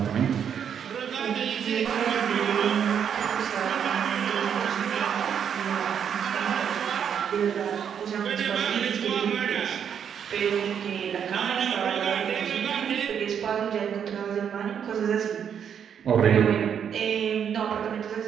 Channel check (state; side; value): quieter; left; 8.1 dB